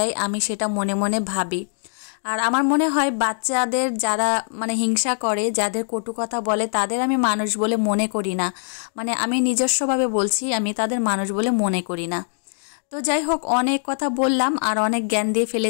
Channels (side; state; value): right; silent; digital silence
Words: আমি সেটা মনে মনে ভাবি। আর আমার মনে হয় বাচ্চাদের যারা মানে হিংসা করে, যাদের কটু কথা বলে, তাদের আমি মানুষ বলে মনে করি না। মানে আমি নিজস্বভাবে বলছি, আমি তাদের মানুষ বলে মনে করি না। তো যাই হোক, অনেক কথা বললাম আর অনেক জ্ঞান দিয়ে